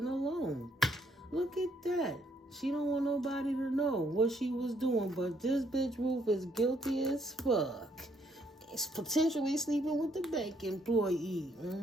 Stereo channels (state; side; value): normal; both; correlation 0.70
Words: alone. Look at that. She don't want nobody to know what she was doing. But this bitch Ruth is guilty as fuck. It's potentially sleeping with the bank employee.